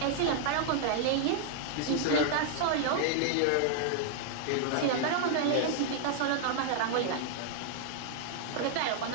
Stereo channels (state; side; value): different; both; correlation -0.01